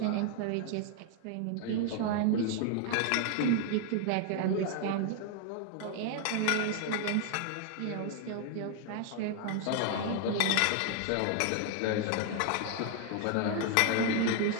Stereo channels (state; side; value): different; both; correlation 0.00